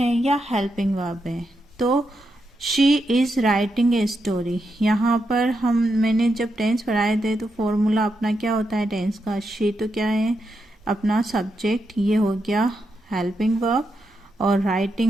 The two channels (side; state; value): both; normal; correlation 0.84